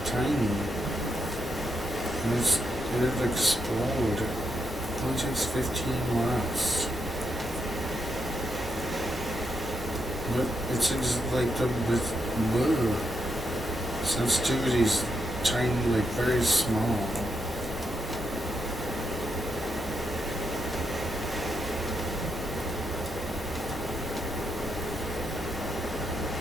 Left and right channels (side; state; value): both; normal; correlation 0.81